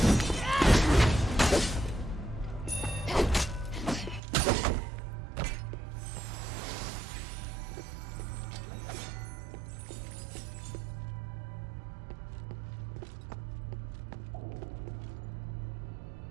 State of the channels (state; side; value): drops out; left; at 4.2 s